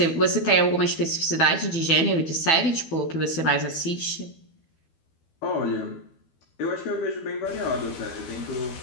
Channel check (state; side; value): late; right; 12 ms